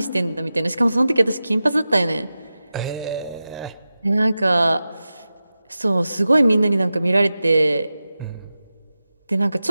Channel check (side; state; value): both; inverted; correlation -0.94